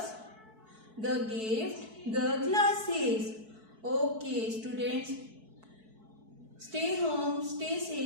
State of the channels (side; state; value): left; late; 4.6 ms